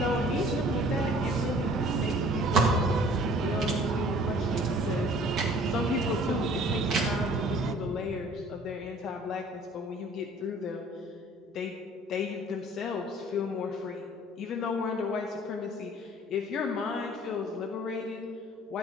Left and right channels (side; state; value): both; normal; correlation 0.52